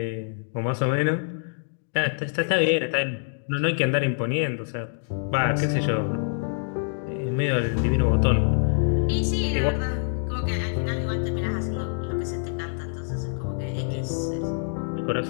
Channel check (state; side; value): silent; right; digital silence